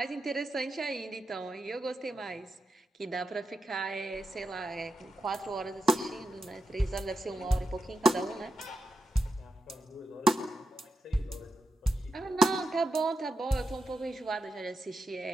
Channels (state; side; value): normal; both; correlation 0.87